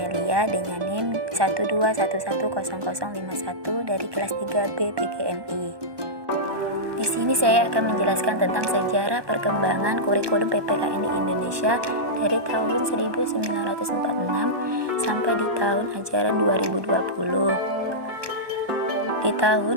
dengan NIM 121100051 dari kelas 3B PGMI. Di sini saya akan menjelaskan tentang sejarah perkembangan kurikulum PPKN di Indonesia dari tahun 1946 sampai di tahun ajaran 2020. Di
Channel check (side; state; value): left; late; 1.2 ms